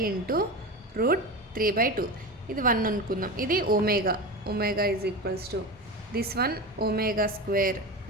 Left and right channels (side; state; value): both; normal; correlation 0.25